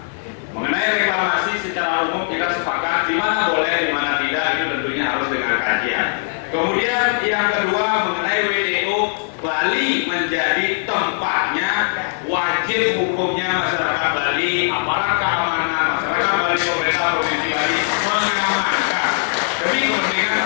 Mengenai reklamasi secara umum kita sepakat di mana boleh, di mana tidak, itu tentunya harus dengan kajian. Kemudian yang kedua mengenai WTO, Bali menjadi tempatnya, wajib hukumnya masyarakat Bali, aparat keamanan, masyarakat Bali, pemerintah Provinsi Bali mengamankan demi kepentingan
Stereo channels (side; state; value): right; silent; digital silence